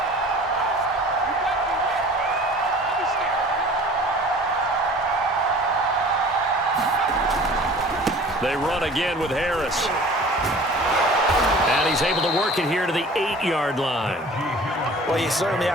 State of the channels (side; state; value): both; normal; correlation 0.45